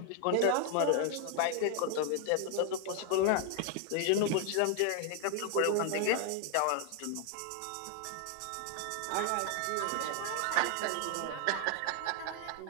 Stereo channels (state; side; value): different; both; correlation 0.00